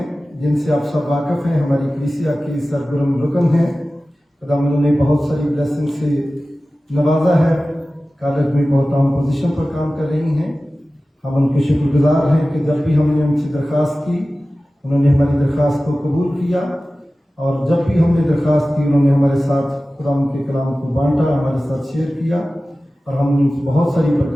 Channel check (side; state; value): both; normal; correlation 0.96